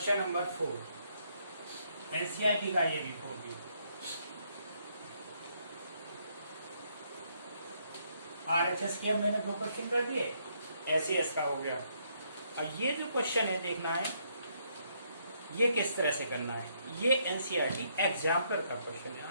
नंबर 4, एनसीईआरटी का ये भी 4 भी। आरएचएस के मैंने 2 क्वेश्चन कर दिए, एसएएस का हो गया। और ये जो क्वेश्चन है देखना है ये किस तरह से करना है, ये एनसीईआरटी एग्जाम्पल का क्वेश्चन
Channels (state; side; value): inverted; both; correlation -0.72